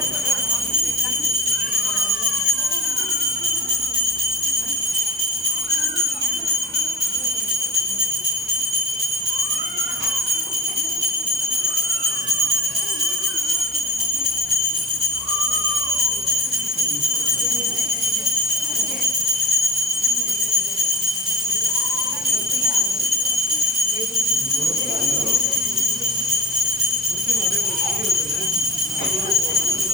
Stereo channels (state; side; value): normal; both; correlation 0.41